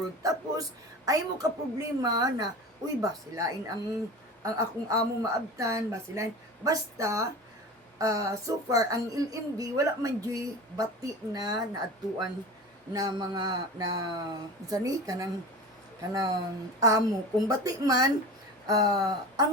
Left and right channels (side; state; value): both; normal; correlation 0.33